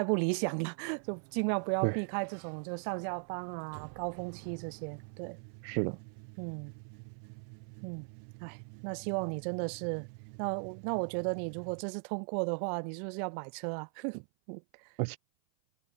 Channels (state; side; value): silent; left; 52 dB below the other